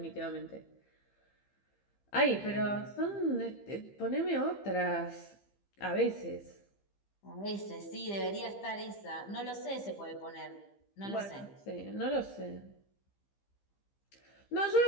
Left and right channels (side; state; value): right; late; 15 ms